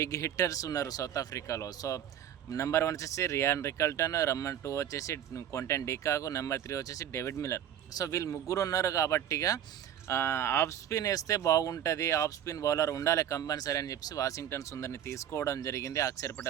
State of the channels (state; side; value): quieter; left; 10.2 dB